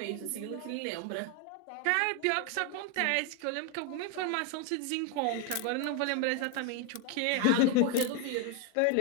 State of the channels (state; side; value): different; both; correlation 0.01